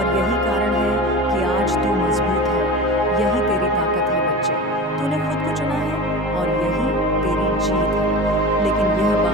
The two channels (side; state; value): both; normal; correlation 0.33